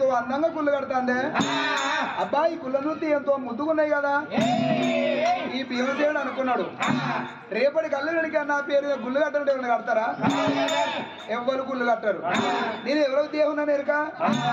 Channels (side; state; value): both; identical; correlation 1.00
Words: అందంగా గుళ్ళు కడతాండే, అబ్బా ఈ గుళ్ళ చూస్తే ఎంతో ముద్దుకున్నాయి కదా. ఈ భీమసేనుడు అనుకున్నాడు, రేపటి కళ్ళు వెనక నా పేరు గుళ్ళు కట్టడం ఎవరైనా కడతారా? ఎవ్వరు గుళ్ళు కట్టారు. నేను ఎవరో దేవున్నాను ఎరుక